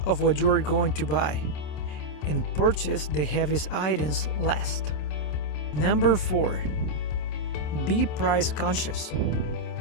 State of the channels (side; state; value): right; late; 26 ms